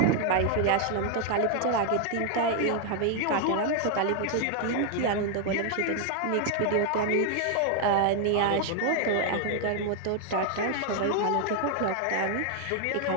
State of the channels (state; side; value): different; both; correlation 0.00